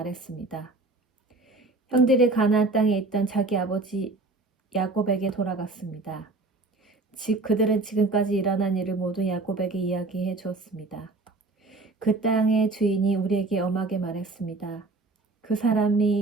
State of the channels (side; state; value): left; quieter; 3.3 dB